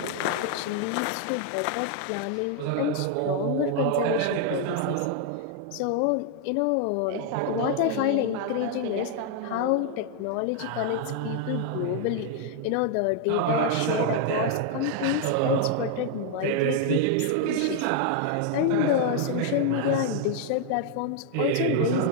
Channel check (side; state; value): both; different; correlation 0.00